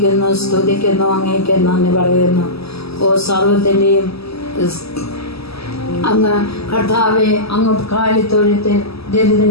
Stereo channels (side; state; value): right; late; 0.78 ms